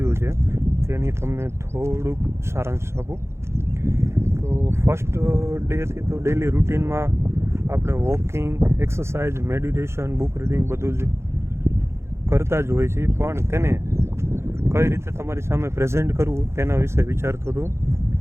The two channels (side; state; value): left; late; 0.13 ms